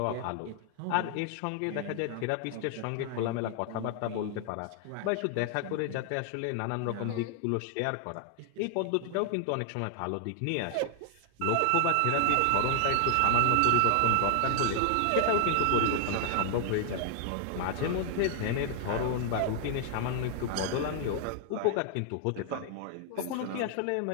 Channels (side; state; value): both; different; correlation 0.00